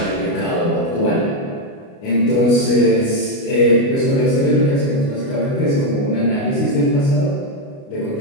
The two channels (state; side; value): late; right; 29 ms